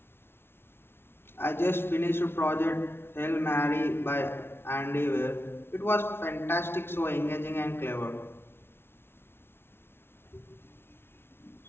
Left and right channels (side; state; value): right; late; 0.11 ms